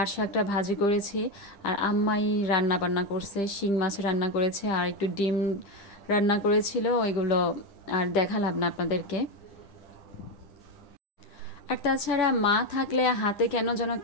শাকটা ভাজি করেছি আর আম্মাই রান্না বান্না করছে শিং মাছ রান্না করেছে আর একটু ডিম রান্না করেছিল ওইগুলো আর দেখালাম না আপনাদেরকে আর তাছাড়া মা থাকলে হাতে কেন যেন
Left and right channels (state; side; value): late; right; 10 ms